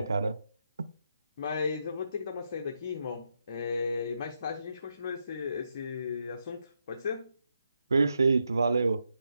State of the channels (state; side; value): inverted; both; correlation -0.83